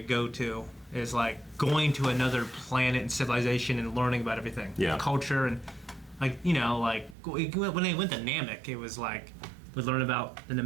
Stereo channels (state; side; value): drops out; left; at 7.2 s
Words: go to is like going to another planet and civilization and learning about everything. Yeah. Culture and like, like when they went to Namek, it was like we learn about the